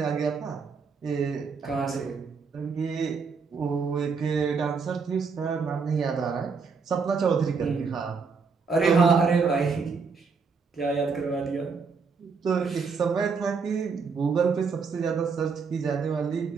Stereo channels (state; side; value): quieter; left; 5.2 dB